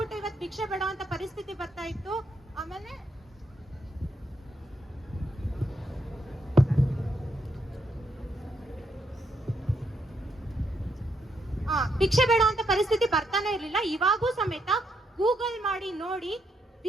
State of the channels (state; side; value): normal; both; correlation 0.78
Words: ಇವತ್ತು ಭಿಕ್ಷೆ ಬೇಡೋಂತ ಪರಿಸ್ಥಿತಿ ಬರ್ತಾ ಇತ್ತು. ಆಮೇಲೆ ಭಿಕ್ಷೆ ಬೇಡ ಅಂತ ಪರಿಸ್ಥಿತಿ ಬರ್ತಾನೆ ಇರ್ಲಿಲ್ಲ. ಇವಾಗೂ ಸಮೇತ ಗೂಗಲ್ ಮಾಡಿ ನೋಡಿ,